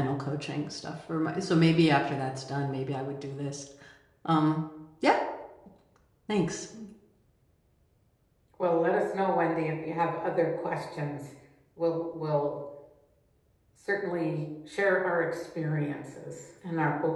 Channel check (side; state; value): both; identical; correlation 1.00